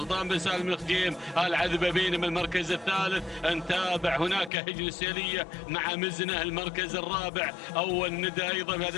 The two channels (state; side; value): drops out; right; at 4.5 s